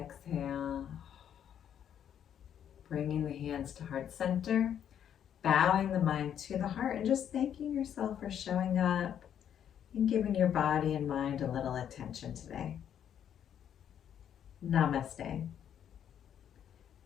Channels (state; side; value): quieter; right; 9.4 dB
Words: Bringing the hands to heart center, bowing the mind to the heart, and just thanking yourself for showing up and giving your body and mind a little attention today. Namaste.